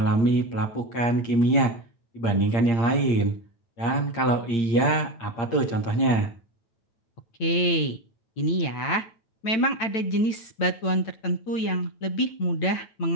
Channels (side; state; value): right; late; 9.0 ms